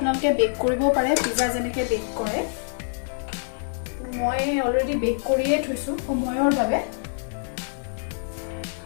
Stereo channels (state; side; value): silent; right; digital silence